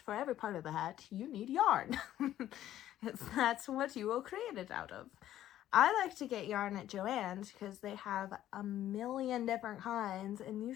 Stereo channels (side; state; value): right; quieter; 12.6 dB